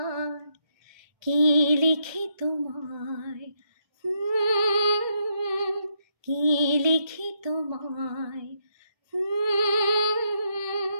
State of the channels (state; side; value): late; left; 1.3 ms